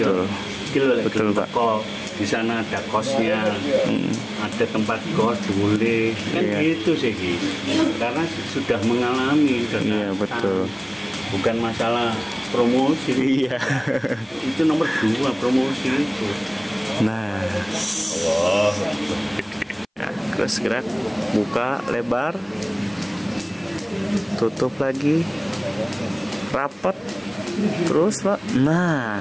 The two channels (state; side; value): identical; both; correlation 1.00